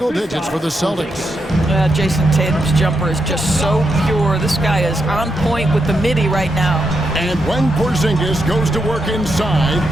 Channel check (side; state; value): both; normal; correlation 0.83